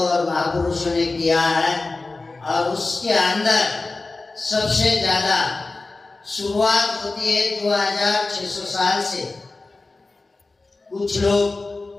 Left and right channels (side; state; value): right; quieter; 3.5 dB